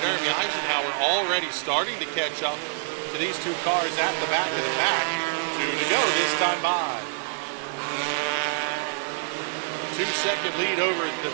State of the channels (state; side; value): silent; left; 61 dB below the other